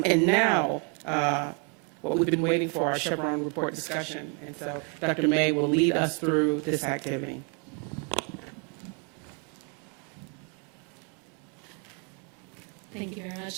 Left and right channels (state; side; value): quieter; left; 36.5 dB